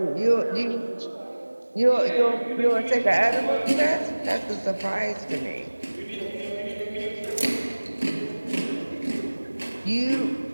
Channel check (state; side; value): inverted; both; correlation -1.00